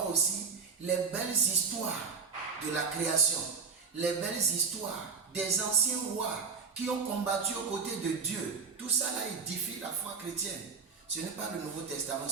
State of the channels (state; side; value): quieter; left; 5.5 dB